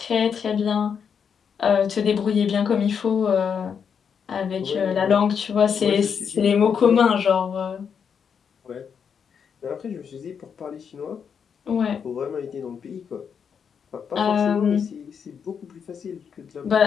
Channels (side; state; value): right; quieter; 7.0 dB